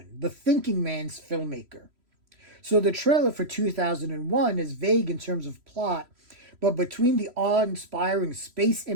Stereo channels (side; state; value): left; late; 3.1 ms